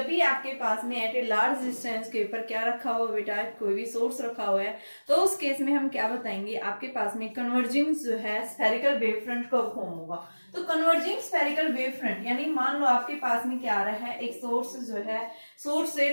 भी आपके पास में एट ए लार्ज डिस्टेंस के ऊपर क्या रखा हुआ बेटा, कोई भी सोर्स रखा हुआ है, तो उस केस में हम क्या बताएंगे, आपके पास में कन्वर्जिंग जो है स्फेरिकल वेव फ्रंट कब फॉर्म होगा। तो कन्वर्जिंग स्फेरिकल वेव फ्रंट, यानी मान लो आपके पास में क्या आ रहा है, एक सोर्स जो है, सोर्स से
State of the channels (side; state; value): both; inverted; correlation -1.00